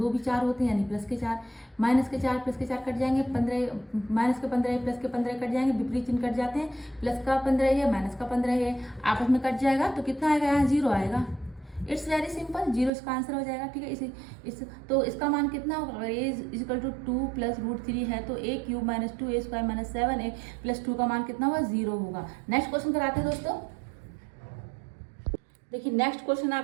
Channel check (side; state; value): left; drops out; at 12.9 s